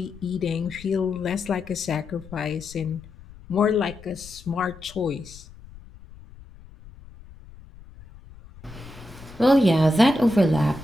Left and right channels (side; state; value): left; noise; rumble, 20 dB below the sound